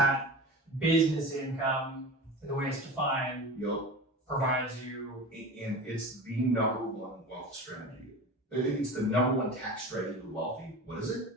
business income, the way it's defined, provides you. And it's the number one wealth strategy. It's the number one tax strategy of the wealthy. What is it?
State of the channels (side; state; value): both; normal; correlation 0.32